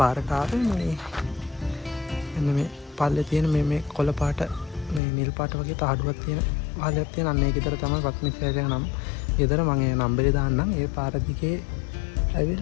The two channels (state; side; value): drops out; right; at 5.0 s